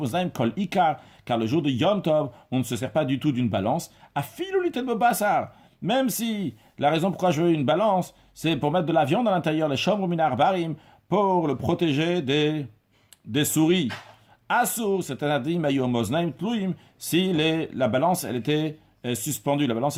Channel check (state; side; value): identical; both; correlation 1.00